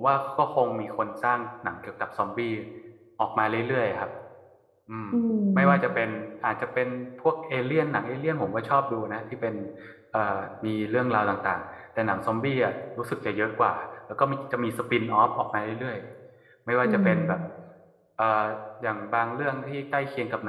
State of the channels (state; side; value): identical; both; correlation 1.00